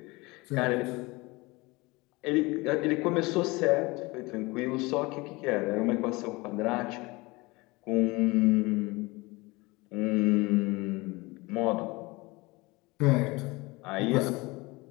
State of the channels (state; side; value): quieter; right; 23.6 dB